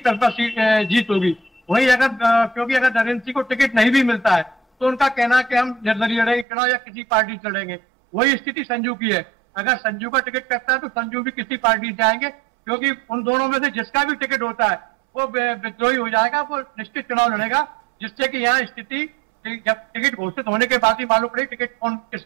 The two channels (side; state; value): left; drops out; at 6.5 s